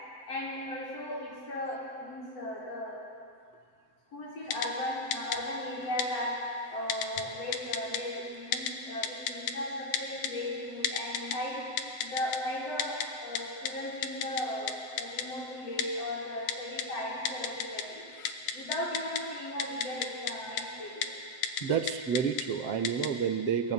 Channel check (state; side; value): late; right; 8.0 ms